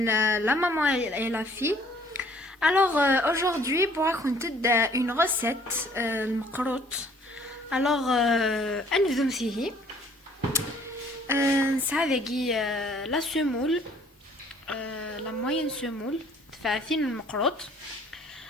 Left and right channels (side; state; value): both; normal; correlation 0.58